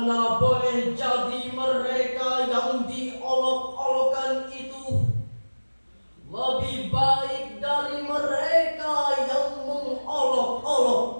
boleh jadi mereka yang diolok-olokkan itu lebih baik dari mereka yang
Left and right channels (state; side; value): inverted; both; correlation -1.00